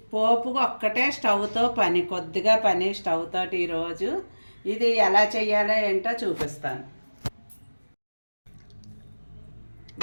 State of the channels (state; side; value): inverted; both; correlation -1.00